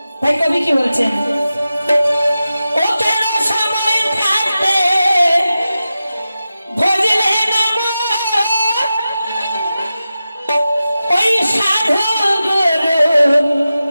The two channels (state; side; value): inverted; both; correlation -0.93